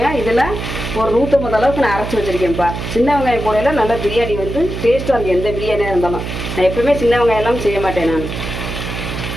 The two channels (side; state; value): right; noise; hum, 6 dB below the sound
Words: இதில் ஒரு 150 அளவுக்கு நான் அரைச்சி வச்சுருக்கேன்ப்பா. சின்ன வெங்காயம் போடையில் நல்லா பிரியாணி வந்து டேஸ்ட்டாக இருக்குது. எந்த பிரியாணியாக இருந்தாலும் நான் எப்பவுமே சின்ன வெங்காயம் எல்லாம் செய்ய மாட்டேன். நான்